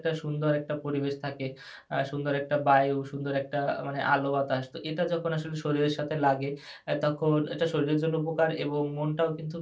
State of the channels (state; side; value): identical; both; correlation 1.00